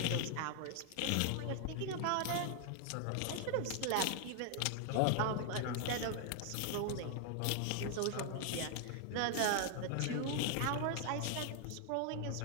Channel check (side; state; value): both; different; correlation 0.00